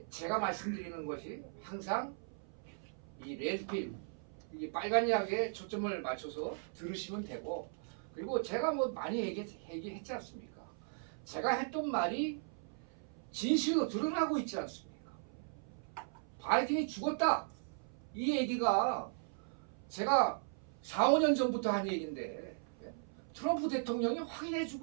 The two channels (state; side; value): silent; left; 53 dB below the other